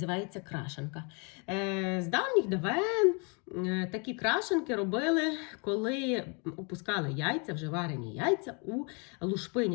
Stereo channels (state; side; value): quieter; right; 34.4 dB